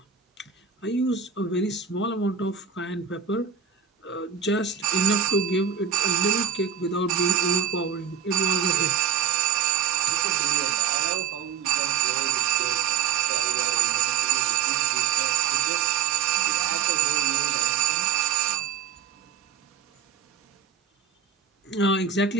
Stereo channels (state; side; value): quieter; left; 7.4 dB